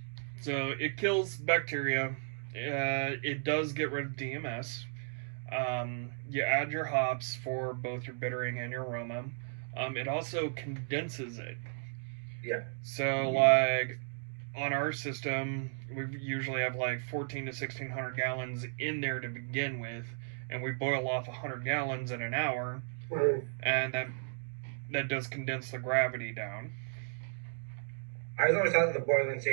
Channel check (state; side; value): silent; left; digital silence